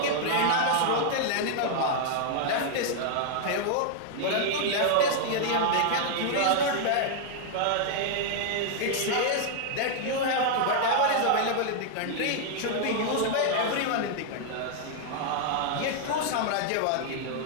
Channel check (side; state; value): both; different; correlation 0.00